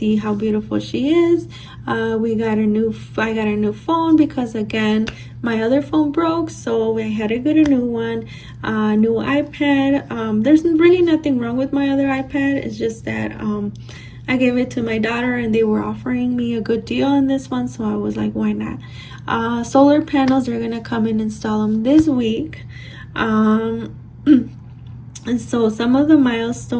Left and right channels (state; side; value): identical; both; correlation 1.00